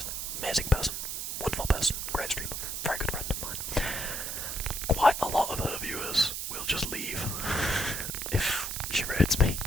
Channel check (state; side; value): noise; right; hiss, 4 dB below the sound